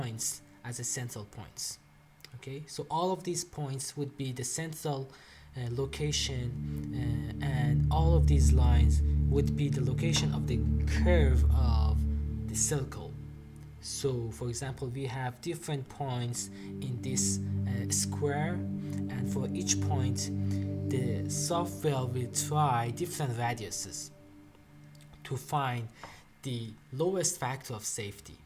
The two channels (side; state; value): both; identical; correlation 1.00